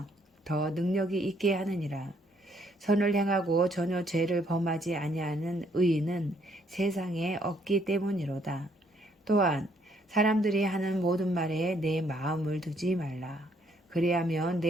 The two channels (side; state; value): both; normal; correlation 0.68